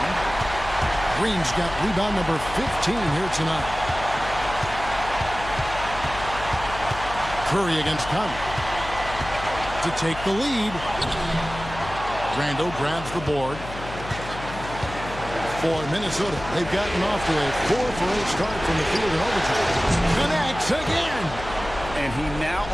Green's got rebound number 15 here tonight. Curry against Conley to take the lead. Randall grabs the board. For Minnesota, they've gotten off to a 4-for-8 start from the field in overtime. Connects again. And he now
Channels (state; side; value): noise; left; hum, 11 dB below the sound